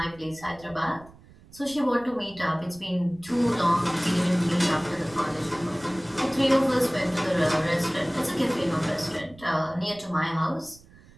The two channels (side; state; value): right; noise; rumble, 23 dB below the sound